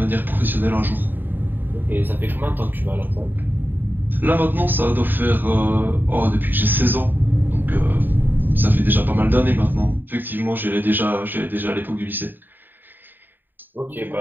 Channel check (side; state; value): left; late; 0.092 ms